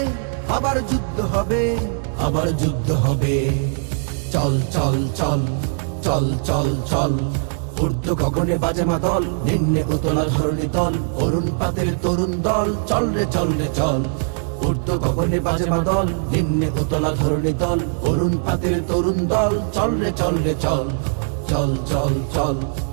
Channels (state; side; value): silent; left; 65 dB below the other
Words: আবার যুদ্ধ হবে, আবার যুদ্ধ হবে। চল চল চল চল চল চল, ঊর্ধ্ব গগনে বাজে মাদল, নিম্নে উতলা ধরণী তল, অরুণ পাতের তরুণ দল, চল রে চল রে চল। ঊর্ধ্ব গগনে বাজে মাদল, নিম্নে উতলা ধরণী তল, অরুণ পাতের তরুণ দল, চল রে চল রে চল। চল চল চল